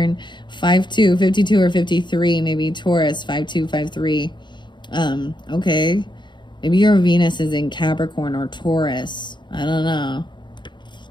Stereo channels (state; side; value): late; right; 0.22 ms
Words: 5-2, 52 or 53. Maybe Taurus. 5-2, 5-3. Okay. Maybe your Venus is in Capricorn or Taurus. I don't know.